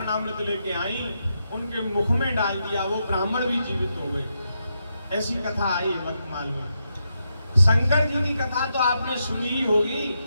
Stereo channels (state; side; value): inverted; both; correlation -0.83